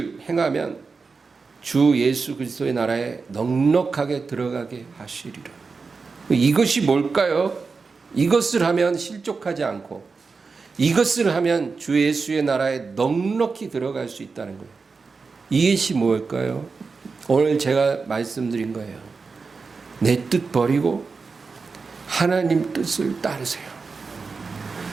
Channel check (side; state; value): left; quieter; 4.6 dB